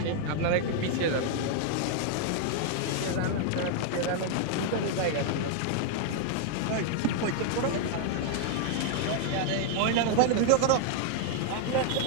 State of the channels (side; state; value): both; different; correlation 0.00